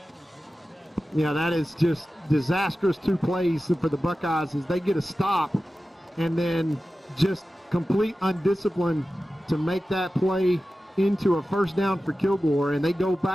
Yeah, that is just disastrous 2 plays for the Buckeyes as they get a stop and then just complete undiscipline to make that play into a first down for Kilgore, and they go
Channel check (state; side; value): normal; both; correlation 0.94